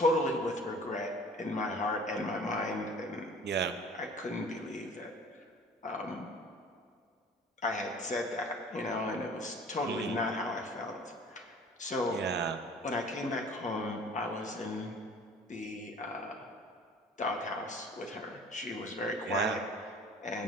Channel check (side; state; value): both; normal; correlation 0.47